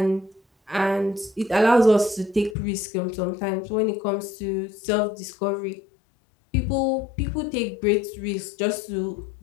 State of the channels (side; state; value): right; drops out; at 2.6 s